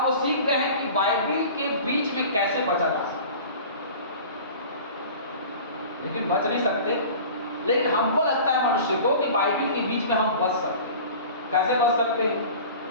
वो सीख गए हैं कि बाइबल के बीच में कैसे बचा जा सकता है, लेकिन बच नहीं सकते। लेकिन हमको लगता है मनुष्य को कि बाइबल के बीच में हम बच सकते हैं। कैसे बच सकते हैं?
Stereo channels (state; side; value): inverted; both; correlation -0.40